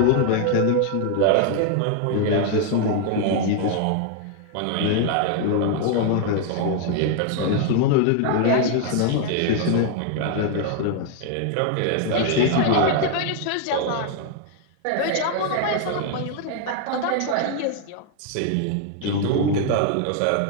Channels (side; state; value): both; different; correlation 0.00